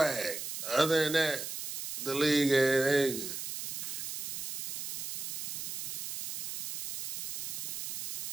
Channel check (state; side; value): noise; right; hiss, 5 dB below the sound